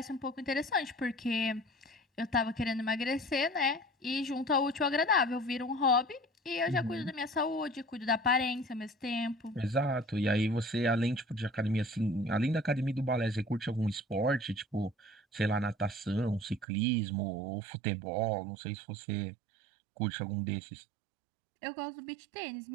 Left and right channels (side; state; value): left; drops out; at 16.7 s